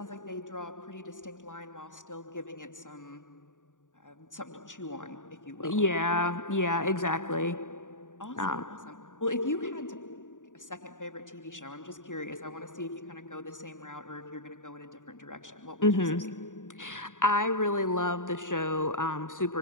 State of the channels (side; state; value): right; late; 0.87 ms